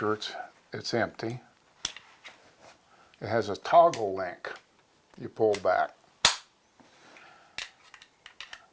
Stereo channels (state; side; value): identical; both; correlation 1.00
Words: it's empty. It has a toggle link. You pull back.